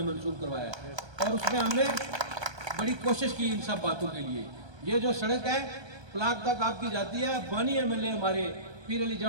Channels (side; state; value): left; late; 1.2 ms